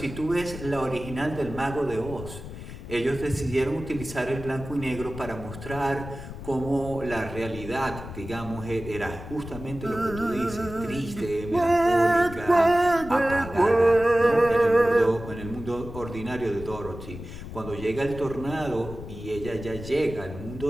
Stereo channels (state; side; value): noise; left; rumble, 11 dB below the sound